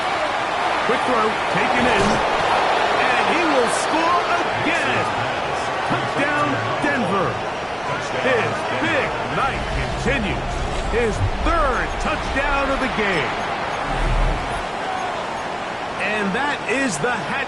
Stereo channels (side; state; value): both; identical; correlation 1.00